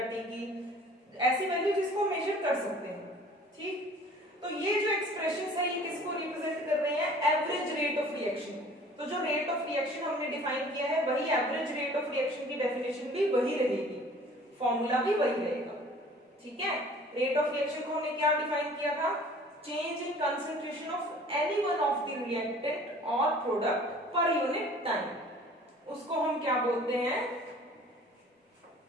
टी की, ऐसी वैल्यू जिसको मेजर कर सकते हैं, ठीक। तो ये जो एक्सप्रेशंस है ये किसको रिप्रेजेंट कर रहे हैं, एवरेज रेट ऑफ रिएक्शन। तो जो रेट ऑफ रिएक्शन हमने डिफाइन किया है वही एवरेज रेट ऑफ रिएक्शन की डेफिनेशन भी वही रहेगी, फॉर्मूला भी वही रहेगा, ठीक है। रेट ऑफ रिएक्शन को हमने क्या डिफाइन किया था, change in concentration of any one of the reactant और प्रोडक्ट पर यूनिट टाइम, उसको हम क्या बोलते हैं,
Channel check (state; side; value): normal; both; correlation 0.49